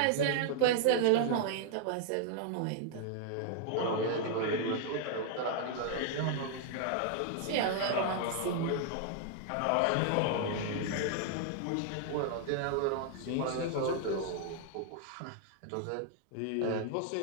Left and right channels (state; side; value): different; both; correlation 0.00